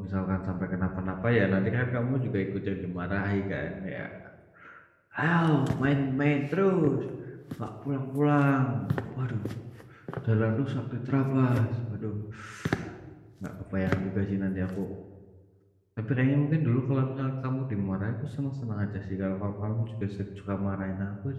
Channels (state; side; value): identical; both; correlation 1.00